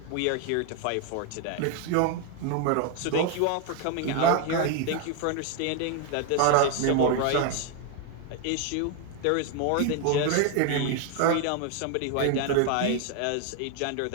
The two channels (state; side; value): different; both; correlation 0.01